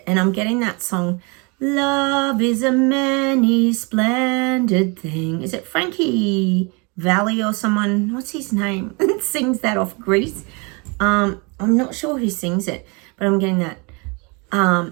and I'm getting that song, Love is a many splendid thing. Is it Frankie Valli or someone? What's his name? Sings that off Greece. I'm not sure who sings it, but I'm getting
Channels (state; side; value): quieter; left; 30.5 dB